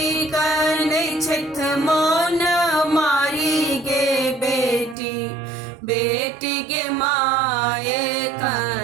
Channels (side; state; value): left; drops out; at 5.0 s